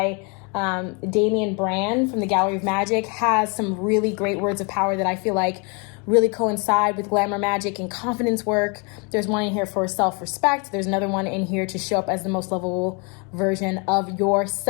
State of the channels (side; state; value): right; quieter; 33.5 dB